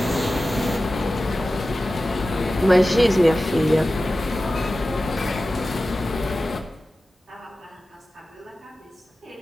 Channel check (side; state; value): both; normal; correlation 0.95